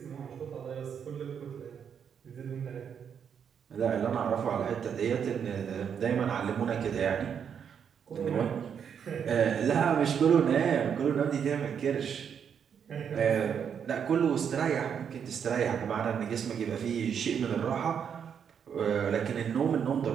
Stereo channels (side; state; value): left; quieter; 7.6 dB